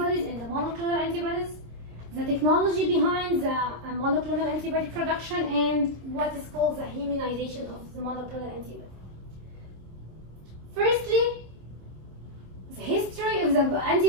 and the monoclonal antibodies, the technology behind the monoclonal antibody production, and what is called the immunization of the monoclonal antibody. Firstly, the history of the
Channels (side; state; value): left; late; 26 ms